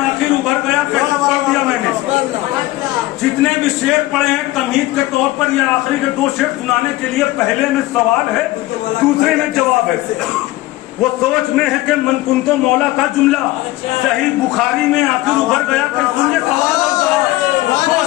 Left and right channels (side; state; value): right; quieter; 17.9 dB